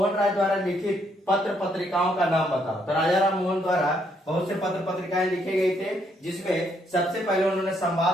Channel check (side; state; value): both; normal; correlation 0.72